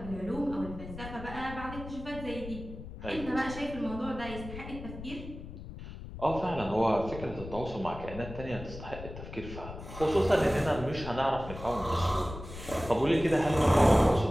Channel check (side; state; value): left; noise; rumble, 11 dB below the sound